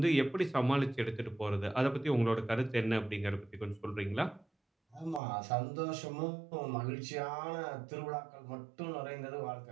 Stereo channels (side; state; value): left; drops out; at 5.2 s